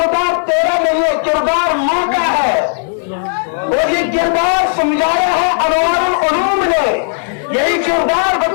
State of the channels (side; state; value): right; silent; 62 dB below the other